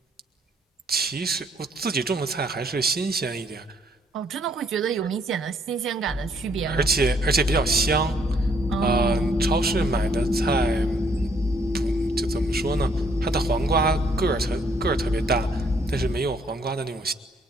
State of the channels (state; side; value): normal; both; correlation 0.67